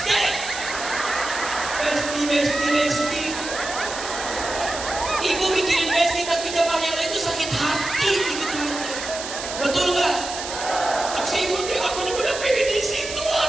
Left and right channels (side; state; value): right; noise; hiss, 8 dB below the sound